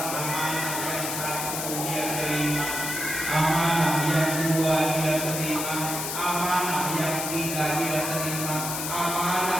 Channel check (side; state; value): left; noise; hiss, 3 dB below the sound